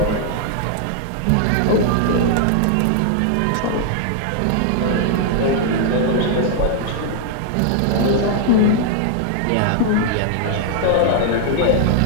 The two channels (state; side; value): different; both; correlation 0.00